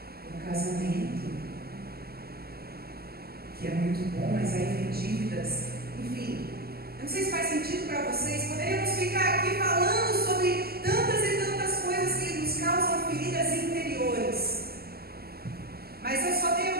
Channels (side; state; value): left; late; 0.45 ms